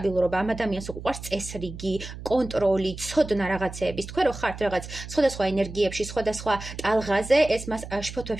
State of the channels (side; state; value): right; noise; hum, 11 dB below the sound